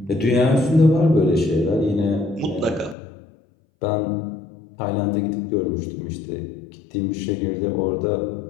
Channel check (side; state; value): right; drops out; at 3.0 s